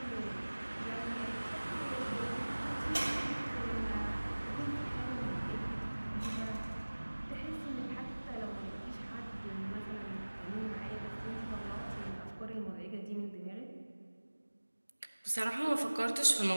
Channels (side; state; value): both; inverted; correlation -1.00